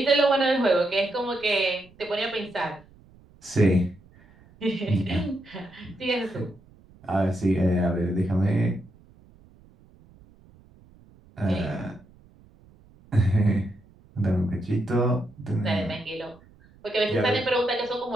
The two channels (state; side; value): noise; right; rumble, 27 dB below the sound